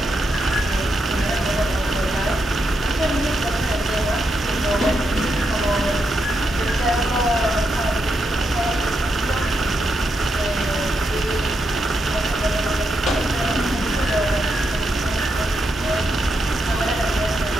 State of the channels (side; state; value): both; normal; correlation 0.83